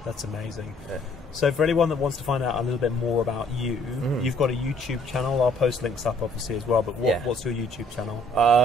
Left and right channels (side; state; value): both; normal; correlation 0.61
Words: That's amazing. So for anyone that wants to find out a little bit more about you, you've got a YouTube channel. I'll post links up obviously as well, but what's your YouTube channel?